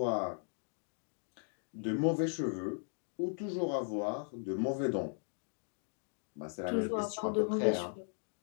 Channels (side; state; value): right; silent; 53 dB below the other